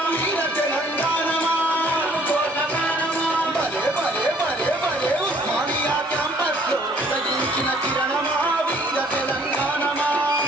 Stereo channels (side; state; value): both; normal; correlation 0.59